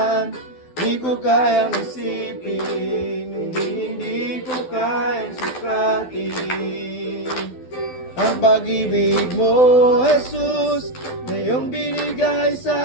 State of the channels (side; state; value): right; late; 12 ms